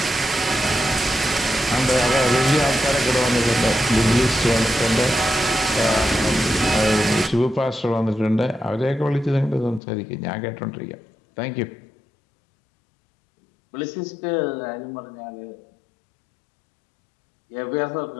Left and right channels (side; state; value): right; drops out; at 9.8 s